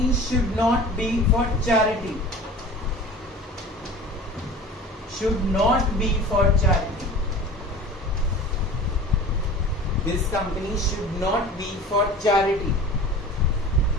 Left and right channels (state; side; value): normal; both; correlation 0.39